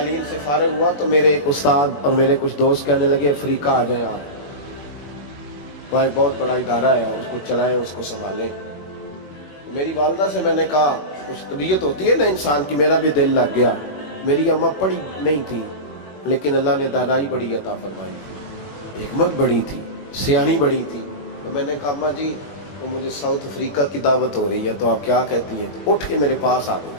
سے فارغ ہوا تو میرے ایک استاد اور میرے کچھ دوست کہنے لگے افریقہ آ جائیں آپ، وہاں بہت بڑا ادارہ ہے، اس کو چلائیں، اس کو سنبھالیں۔ تو میری والدہ سے میں نے کہا، کچھ طبیعت ہوتی ہے نا انسان کی، میرا بھی دل لگ گیا۔ میری اماں پڑھی نہیں تھی لیکن اللہ نے دانائی بڑی عطا فرمائی تھی، حکمت بڑی تھی، سیانی بڑی تھی۔ تو میں نے کہا اماں جی وہ مجھے ساؤتھ افریقہ کی دعوت ہو رہی ہے تو آپ کیا کہتی ہیں؟ تو اٹھ کے میرے پاس آ گئی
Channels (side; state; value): right; late; 21 ms